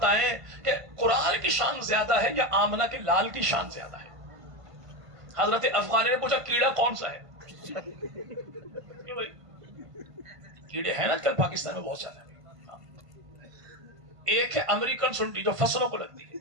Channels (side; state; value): left; late; 1.5 ms